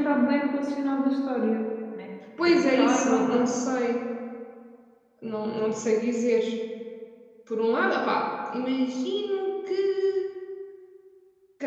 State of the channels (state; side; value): identical; both; correlation 1.00